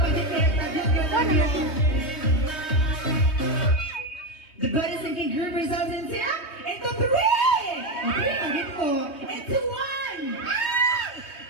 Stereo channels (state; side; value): late; right; 3.2 ms